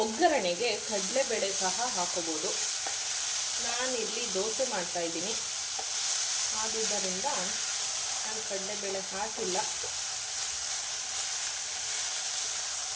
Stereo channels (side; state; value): both; identical; correlation 1.00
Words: ಒಗ್ಗರಣೆಗೆ ಕಡಲೆಬೇಳೆ ಸಹ ಹಾಕೋಬೋದು. ನಾನಿಲ್ಲಿ ದೋಸೆ ಮಾಡ್ತಾಯಿದ್ದೀನಿ, ಆದುದರಿಂದ ನಾನು ಕಡಲೆಬೇಳೆ ಹಾಕಿಲ್ಲ.